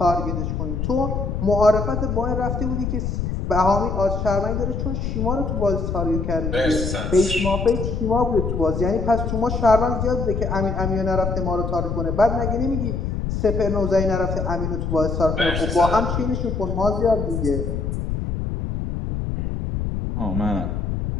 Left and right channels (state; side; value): noise; left; rumble, 2 dB below the sound